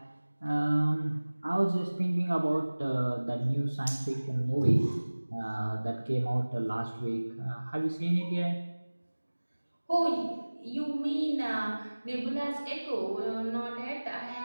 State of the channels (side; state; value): both; inverted; correlation -1.00